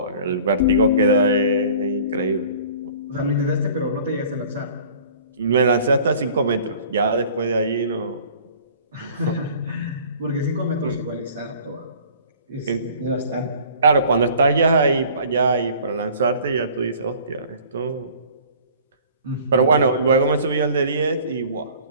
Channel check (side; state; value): both; inverted; correlation -0.49